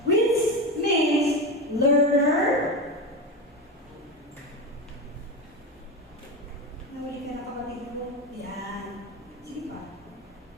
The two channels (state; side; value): normal; both; correlation 0.19